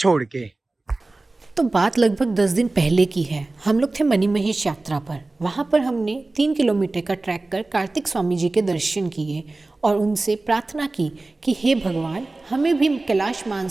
के। तो बात लगभग 10 दिन पहले की है। हम लोग थे मणिमहेश यात्रा पर। वहाँ पर हमने 3 किलोमीटर का ट्रैक कर कार्तिक स्वामी जी के दर्शन किए और उनसे प्रार्थना की कि हे भगवान, हमें भी कैलाश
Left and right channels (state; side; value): quieter; left; 3.1 dB